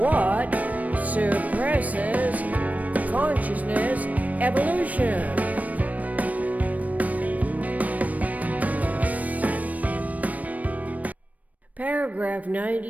suppresses consciousness evolution? Paragraph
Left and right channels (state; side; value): late; left; 0.072 ms